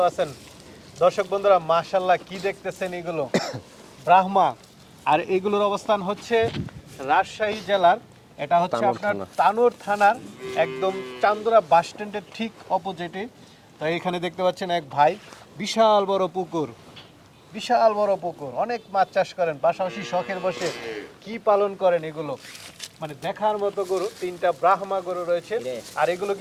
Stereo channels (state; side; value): identical; both; correlation 1.00